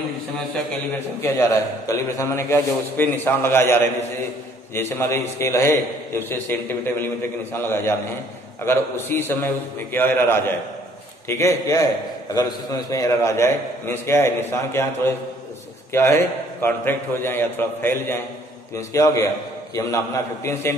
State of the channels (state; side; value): normal; both; correlation 0.60